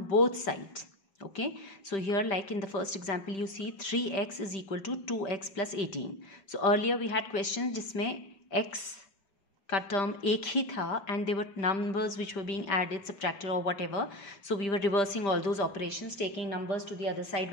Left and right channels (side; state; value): right; late; 5.1 ms